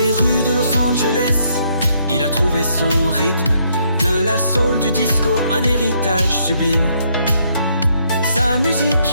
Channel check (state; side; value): inverted; both; correlation -0.72